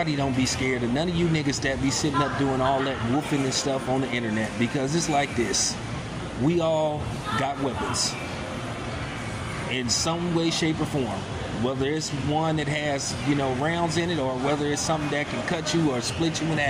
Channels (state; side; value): identical; both; correlation 1.00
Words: don't be scared of none of you niggas that be sitting up doing all that woofing and stuff on the internet, because it's like this. We all got weapons in some way, shape, or form. Whether it's one that has, rounds in it, or whether it's something that can cut you or split you in